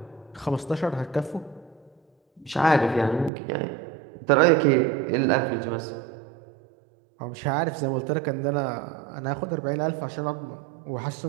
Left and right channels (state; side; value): drops out; left; at 3.3 s